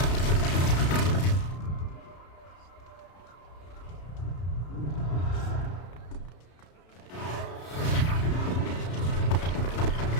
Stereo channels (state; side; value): late; right; 33 ms